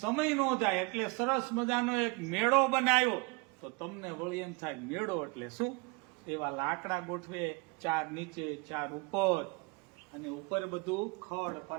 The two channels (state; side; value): quieter; left; 29.3 dB